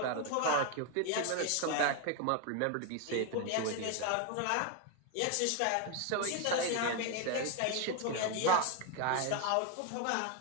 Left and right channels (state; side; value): different; both; correlation 0.01